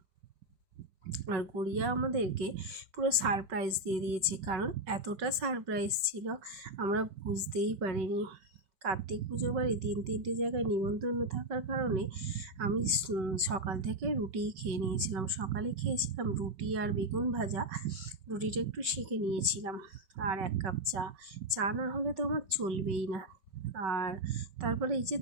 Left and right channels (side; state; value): left; late; 5.3 ms